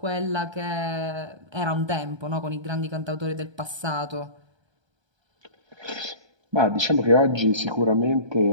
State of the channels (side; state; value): left; late; 1.3 ms